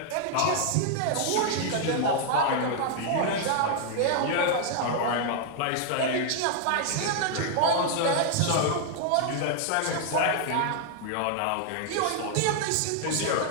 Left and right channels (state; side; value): different; both; correlation 0.00